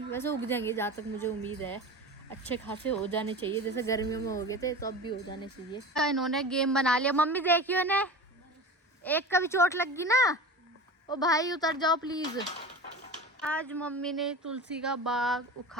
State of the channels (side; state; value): both; normal; correlation 0.33